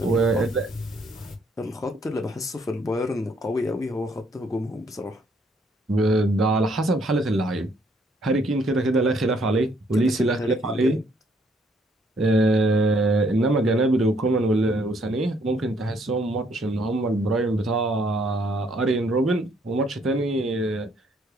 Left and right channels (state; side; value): normal; both; correlation 0.67